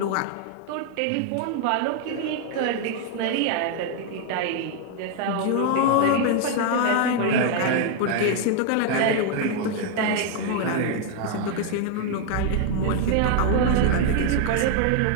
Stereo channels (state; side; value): different; both; correlation 0.00